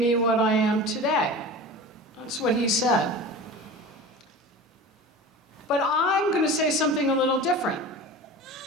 what I am today. That's what he said. But I'm going to say something a little different,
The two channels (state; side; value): normal; both; correlation 0.34